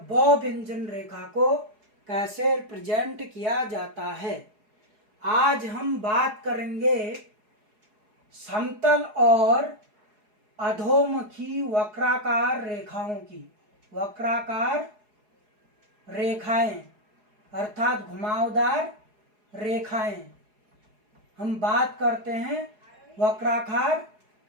ब व्यंजन रेखा को कैसे रिप्रेजेंट किया जाता है। आज हम बात करेंगे समतल और अधोमुखी वक्राकार रेखाओं की। वक्राकार रेखाएं अर्थात घुमावदार रेखाएं। हम बात करते हैं वक्राकार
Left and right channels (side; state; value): left; late; 4.8 ms